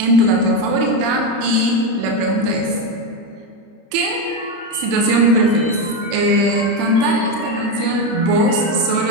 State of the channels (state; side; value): late; left; 30 ms